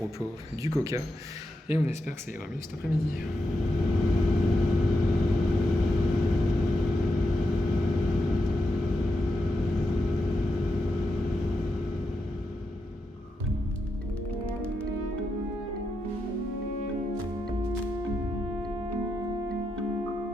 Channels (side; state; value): both; normal; correlation 0.86